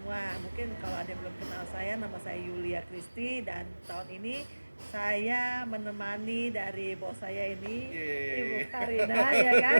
Mungkin kalau ada yang belum kenal saya, nama saya Yulia Kristi dan tahun ini saya menemani dari bos saya ini, Ibu Karina ya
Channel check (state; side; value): inverted; both; correlation -1.00